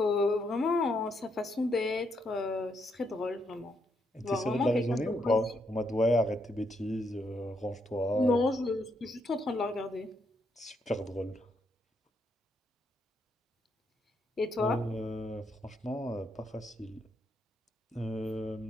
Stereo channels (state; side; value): normal; both; correlation 0.77